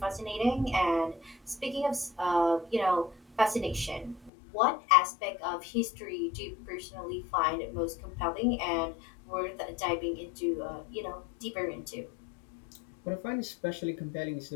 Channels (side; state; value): right; drops out; at 4.3 s